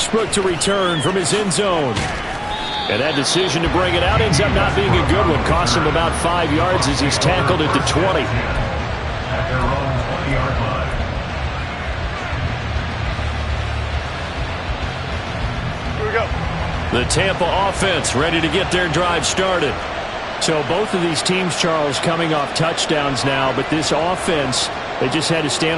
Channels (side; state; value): both; identical; correlation 1.00